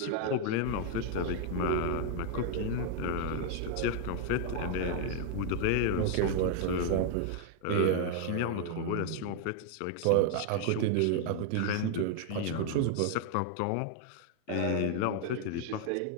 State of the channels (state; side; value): different; both; correlation 0.00